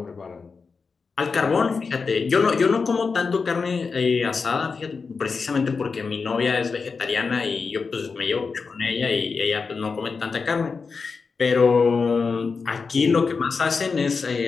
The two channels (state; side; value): quieter; right; 4.9 dB